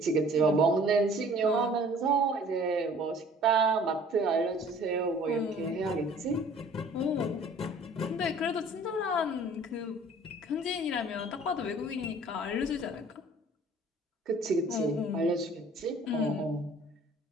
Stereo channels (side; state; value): both; normal; correlation 0.51